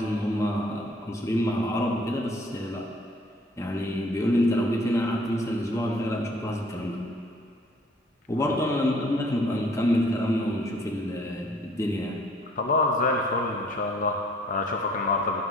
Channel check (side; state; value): both; normal; correlation 0.58